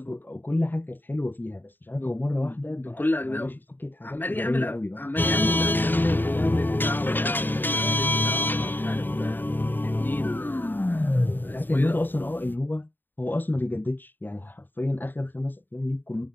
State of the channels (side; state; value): right; late; 0.092 ms